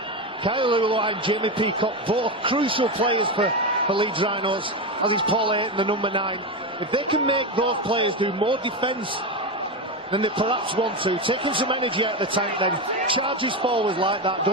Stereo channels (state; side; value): normal; both; correlation 0.15